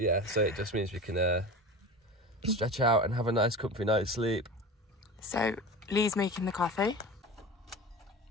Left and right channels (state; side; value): normal; both; correlation 0.31